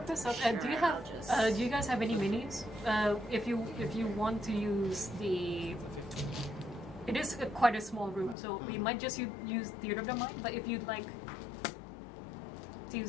of, do you have? Do you guys have any minis? If you want to use the, it is quite a small room, so we might just use Theater of the Mind. But if you'd like to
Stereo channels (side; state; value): right; drops out; at 8.3 s